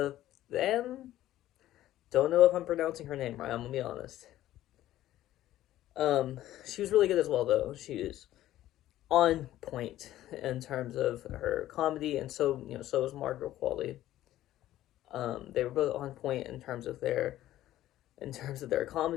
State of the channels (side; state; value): right; quieter; 13.9 dB